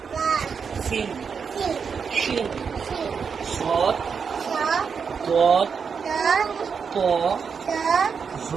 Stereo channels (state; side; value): quieter; left; 6.1 dB